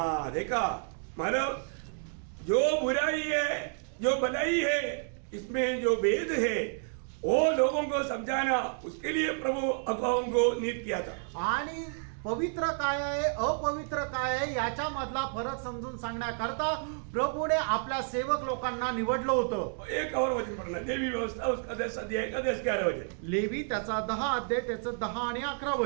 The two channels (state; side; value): silent; left; 57 dB below the other